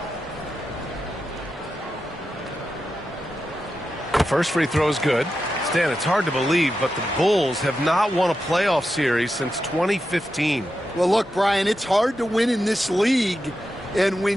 First free throw is good. Stan, it's hard to believe, but the Bulls have not won a playoff series since 2015. Well, look, Brian, it's hard to win in this league, and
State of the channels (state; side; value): normal; both; correlation 0.89